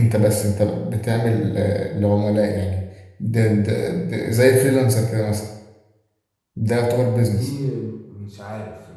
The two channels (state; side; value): identical; both; correlation 1.00